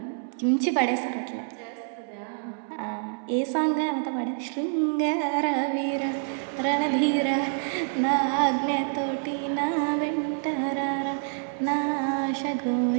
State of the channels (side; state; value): left; silent; 60 dB below the other